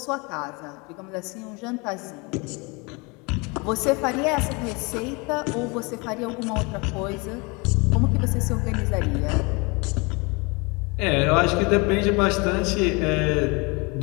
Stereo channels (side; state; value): right; quieter; 28.5 dB